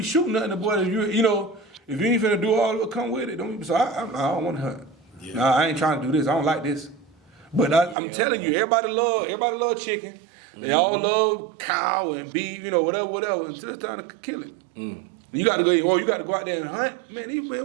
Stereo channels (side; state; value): left; drops out; at 8.0 s